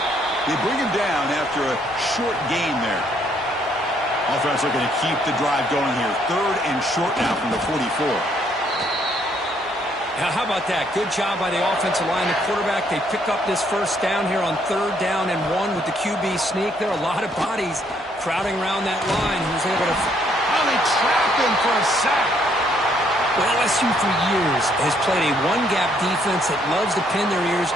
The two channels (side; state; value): both; normal; correlation 0.69